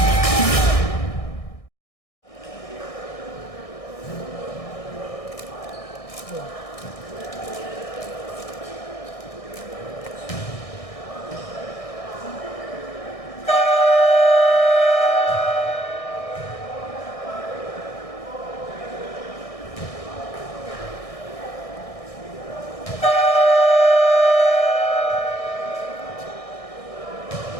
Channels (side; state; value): right; late; 1.6 ms